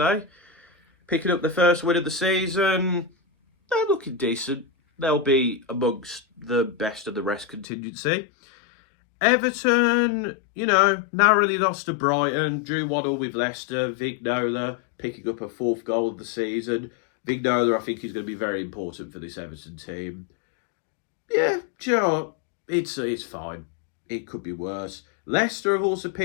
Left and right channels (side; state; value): right; drops out; at 7.7 s